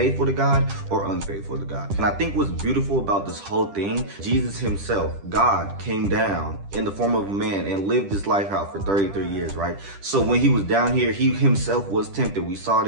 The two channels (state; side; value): late; left; 10 ms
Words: to God or unfaithful to God. And I think what's beautiful about this whole thing, Jesus Himself, God, came down in the form of a man and lived this life out for 33 years. Right? So when He was down here, He Himself was tempted. We saw it